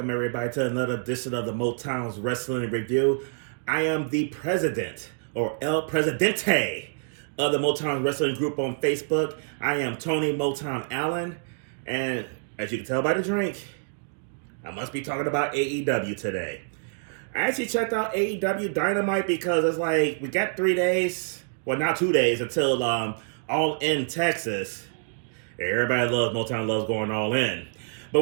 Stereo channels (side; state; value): left; silent; digital silence